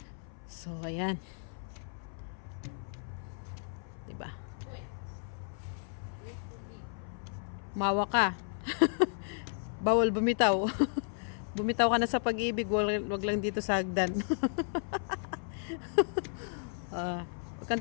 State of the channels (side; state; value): right; silent; 55 dB below the other